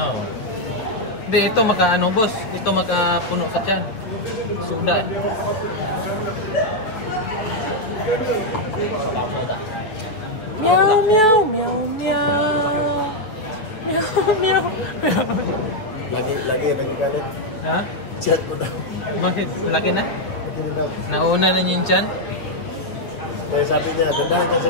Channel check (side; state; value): right; late; 9.1 ms